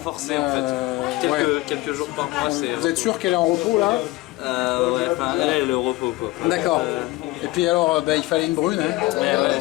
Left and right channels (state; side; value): quieter; right; 19.8 dB